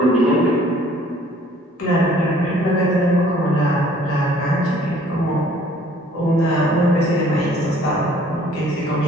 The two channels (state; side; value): normal; both; correlation 0.56